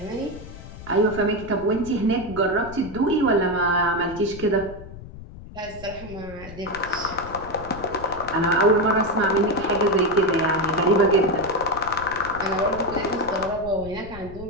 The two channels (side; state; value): left; noise; rumble, 15 dB below the sound